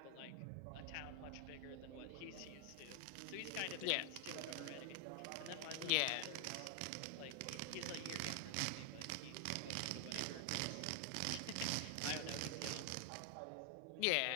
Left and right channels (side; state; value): both; different; correlation 0.00